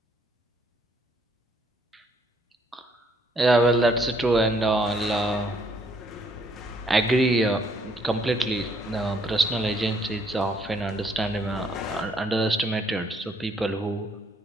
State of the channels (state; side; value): normal; both; correlation 0.68